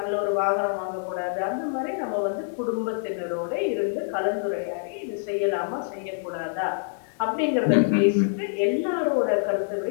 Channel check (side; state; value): right; silent; digital silence